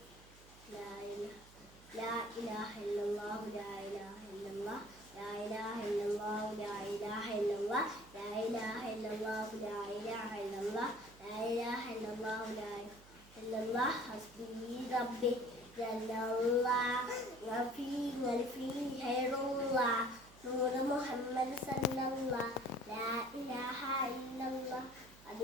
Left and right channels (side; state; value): right; noise; hum, 22 dB below the sound